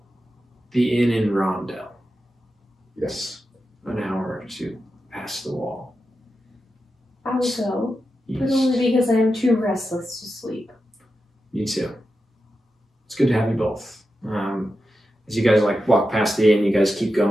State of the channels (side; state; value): both; normal; correlation 0.90